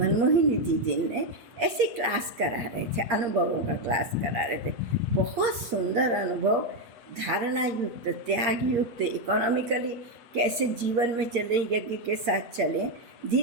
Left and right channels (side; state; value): left; late; 8.6 ms